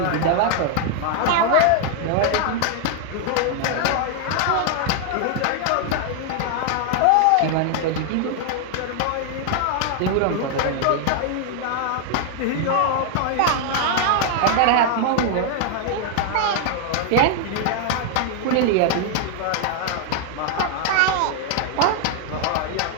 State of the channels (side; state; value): both; different; correlation 0.00